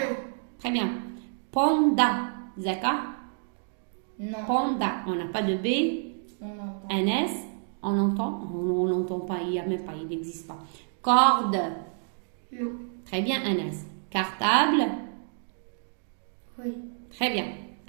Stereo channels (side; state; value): left; silent; digital silence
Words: très bien panda Zaka Non. panda on n'a pas de B On entend. Anas on n'entend pas il n'y a même pas il n'existe pas corde Non. très bien Anas cartable Oui. très bien